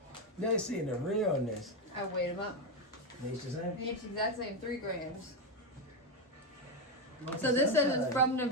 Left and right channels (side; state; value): both; normal; correlation 0.08